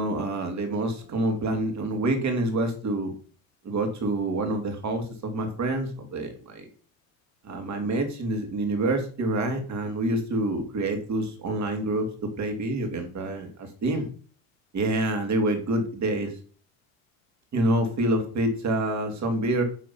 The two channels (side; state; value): both; normal; correlation 0.30